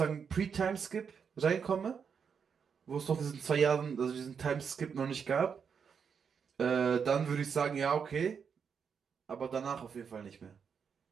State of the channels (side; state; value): left; quieter; 6.6 dB